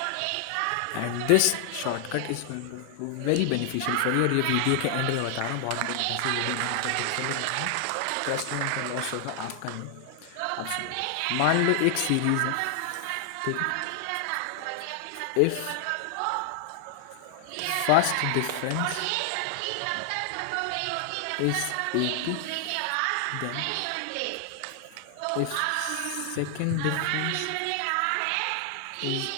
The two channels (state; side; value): different; both; correlation 0.00